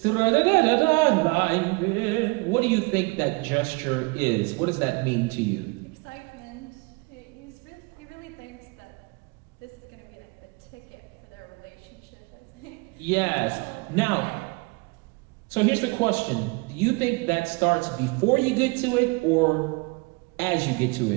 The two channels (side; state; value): left; quieter; 28.5 dB